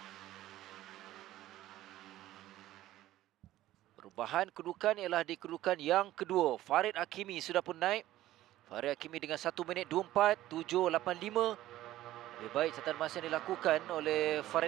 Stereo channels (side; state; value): left; quieter; 14.7 dB